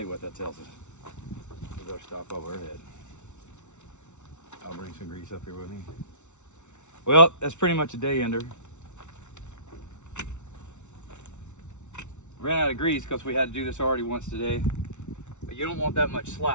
you what that tells us. We better stop over our head. I'll bring some grease up here with me. Well, that's pretty much a day ender. Ran out of grease because we had to do this already once today. But you don't want that much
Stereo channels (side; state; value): right; late; 0.83 ms